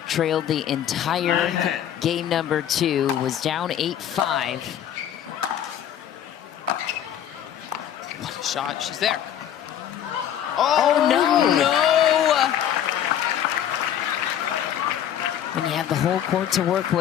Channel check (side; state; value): right; quieter; 10.2 dB